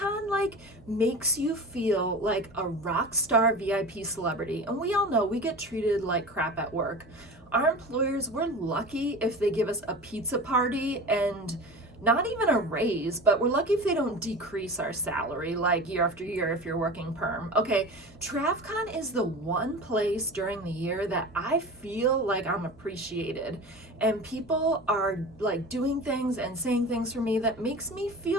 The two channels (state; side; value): normal; both; correlation 0.33